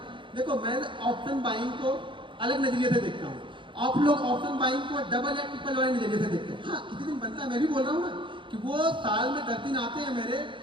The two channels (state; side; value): late; left; 0.24 ms